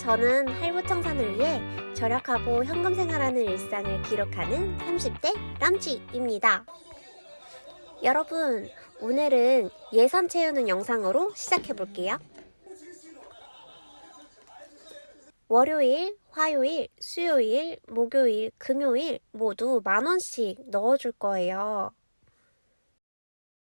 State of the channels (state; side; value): inverted; both; correlation -1.00